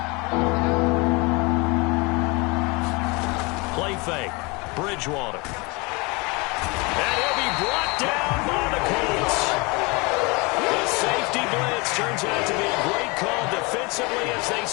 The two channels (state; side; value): quieter; right; 27.3 dB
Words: Play fake. Bridgewater. And he'll be brought down by the Colts. The safety blitz turns out to be a great call defensively as they